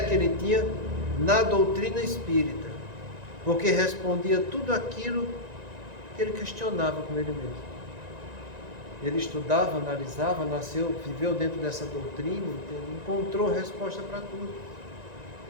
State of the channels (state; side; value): late; left; 1.9 ms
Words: ele tinha na doutrina espírita, porque respondia tudo aquilo que ele questionava com ele mesmo. Ele estudava, analisava, nasceu, viveu dentro dessa doutrina, encontrou resposta para tudo.